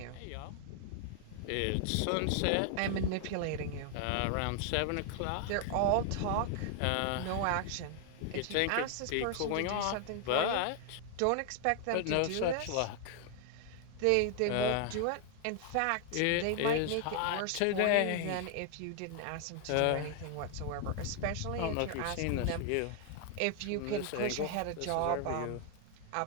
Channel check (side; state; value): both; different; correlation 0.00